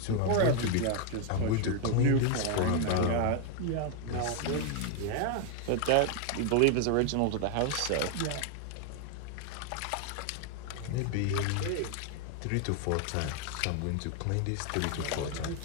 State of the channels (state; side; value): different; both; correlation 0.00